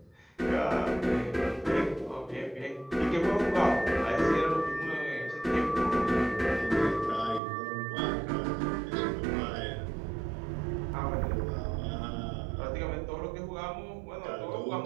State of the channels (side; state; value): left; drops out; at 7.4 s